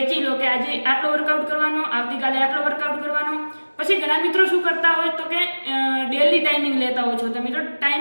લો કે આજે આટલો વર્કઆઉટ કરવાનો, આવતીકાલે આટલો વર્કઆઉટ કરવાનો। પછી ઘણા મિત્રો શું કરતા હોય તો કે ડેલી ટાઈમિંગ લેતા હોય છો તમે, તો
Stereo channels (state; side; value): inverted; both; correlation -1.00